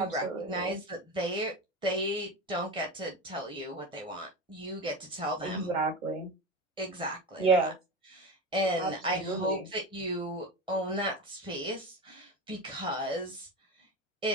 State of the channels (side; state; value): both; normal; correlation 0.23